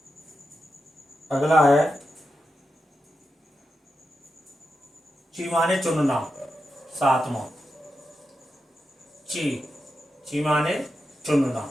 ची माने चुनना, सातवां। ची माने चुनना,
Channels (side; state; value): both; normal; correlation 0.88